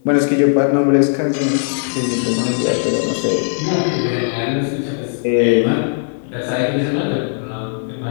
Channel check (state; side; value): silent; right; digital silence